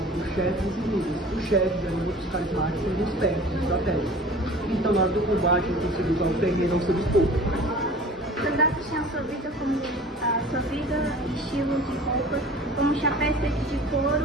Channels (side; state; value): both; normal; correlation 0.43